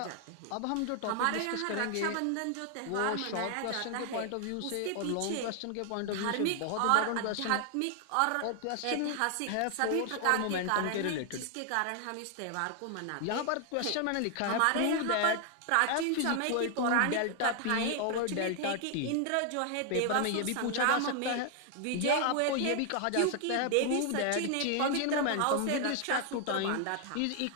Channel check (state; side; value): different; both; correlation 0.00